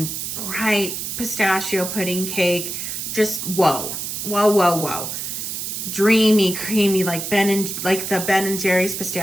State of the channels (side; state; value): right; noise; hiss, 5 dB below the sound